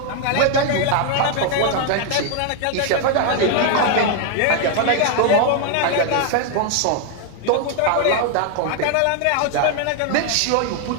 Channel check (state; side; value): different; both; correlation 0.00